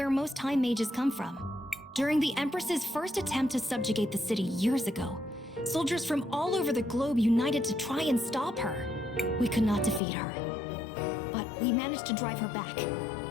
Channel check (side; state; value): right; drops out; at 10.0 s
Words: most Time Mages come from. During the Empress's first attempt to subjugate the city years ago, soldiers from all over the globe united to try and stop her. We could not defeat her, but we managed to drive her back.